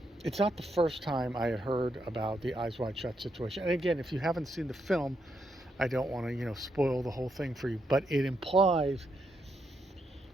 it's not the first time I had heard about the Eyes Wide Shut situation. And again, if you haven't seen the film, I don't want to, spoil the whole thing for you. But it implies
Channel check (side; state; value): both; normal; correlation 0.80